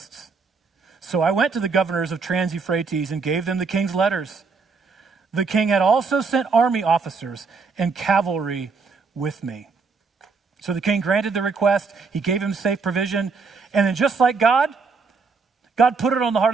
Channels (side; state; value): left; quieter; 4.8 dB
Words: So I went to the governors of Trans-Euphrates and gave them the king's letters. The king had also sent army officers and cavalry with me. So the king granted the request. He gave him safe provision. And then just like God put it on the heart